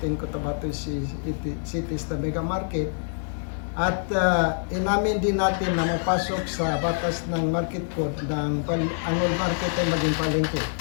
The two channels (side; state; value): right; silent; 61 dB below the other